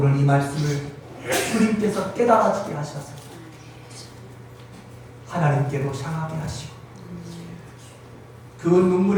이 말씀을 주님께서 깨달아지게 하셔서 하나님께로 향하게 하시고, 그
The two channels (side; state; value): both; identical; correlation 1.00